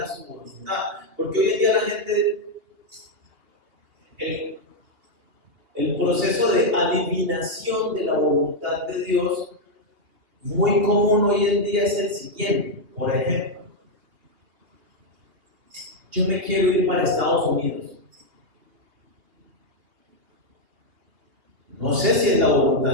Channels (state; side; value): late; left; 2.8 ms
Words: su voluntad? Porque hoy en día la gente, el proceso de adivinación de la voluntad de Dios, muy común hoy en día es el siguiente. Por ejemplo, yo me quiero ir para Estados Unidos. No sé si es la